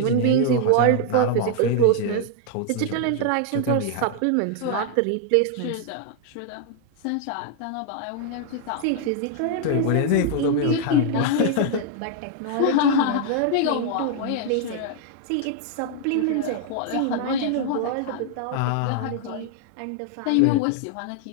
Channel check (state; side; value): different; both; correlation 0.00